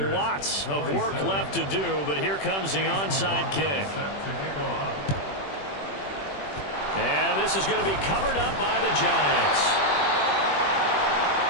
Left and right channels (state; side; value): late; right; 21 ms